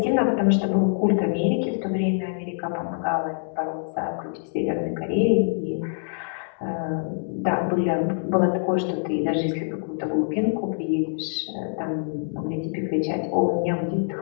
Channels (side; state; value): right; silent; digital silence